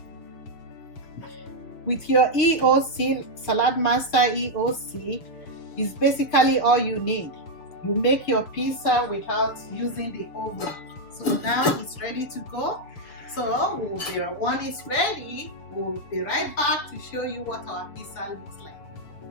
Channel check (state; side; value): late; right; 7.2 ms